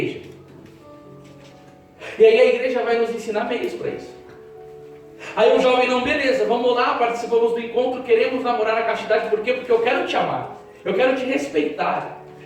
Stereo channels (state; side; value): identical; both; correlation 1.00